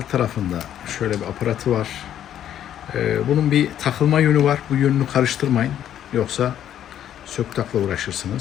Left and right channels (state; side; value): quieter; right; 10.6 dB